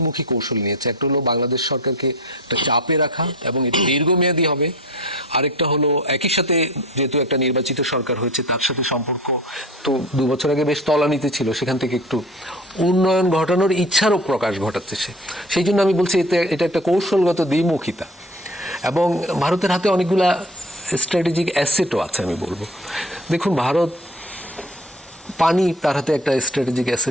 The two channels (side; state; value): both; normal; correlation 0.39